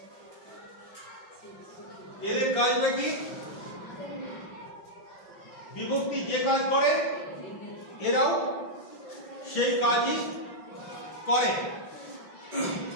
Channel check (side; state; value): right; late; 5.9 ms